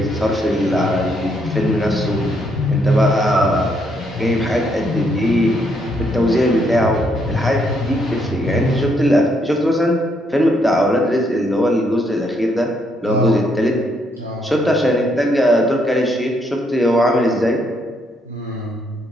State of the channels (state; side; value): normal; both; correlation 0.73